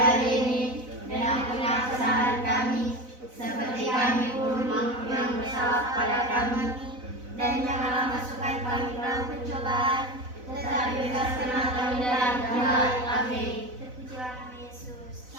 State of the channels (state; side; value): late; left; 4.0 ms